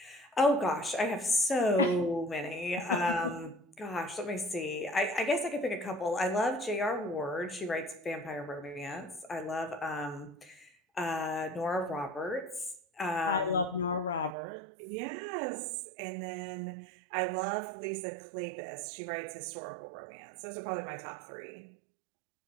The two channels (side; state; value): left; drops out; at 14.4 s